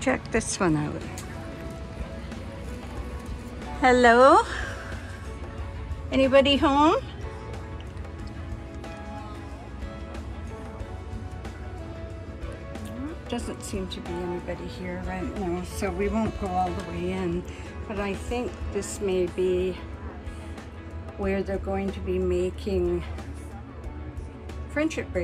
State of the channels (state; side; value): identical; both; correlation 1.00